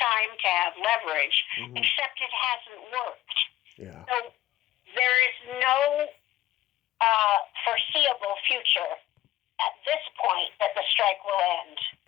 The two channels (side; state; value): right; quieter; 15.2 dB